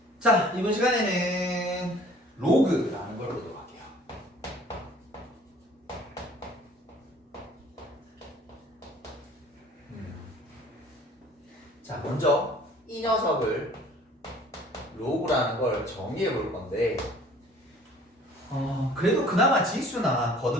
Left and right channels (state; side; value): normal; both; correlation 0.52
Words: 자, 이번 시간에는 로그라는 걸 보도록 할게요. 자, 먼저 이 녀석을 로그라는 걸 정의해 볼 건데 그래도 그나마 지수나